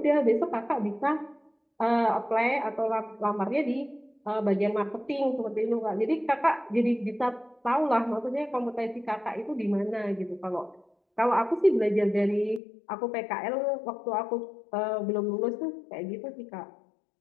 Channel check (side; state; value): right; drops out; at 12.6 s